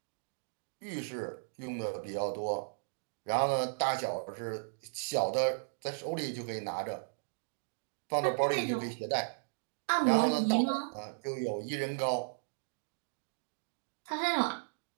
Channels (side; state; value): left; silent; digital silence